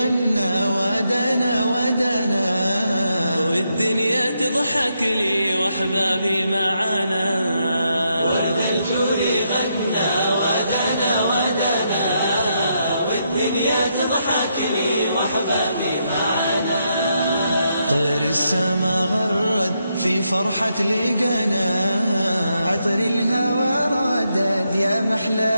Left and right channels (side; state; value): both; inverted; correlation -0.80